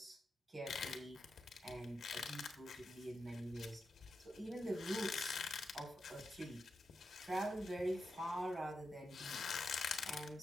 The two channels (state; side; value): normal; both; correlation 0.87